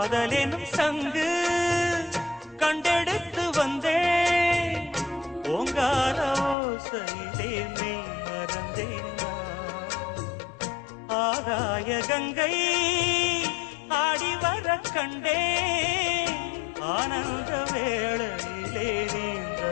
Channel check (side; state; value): right; drops out; at 6.6 s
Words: காதலெனும் சங்கு கண்டெடுத்து வந்தேன் ஓங்கார ஓசையிலே மெய் மறந்தேன் ஆகாய கங்கை ஆடி வர கண்டேன் ஆனந்த வேளையிலே நீந்த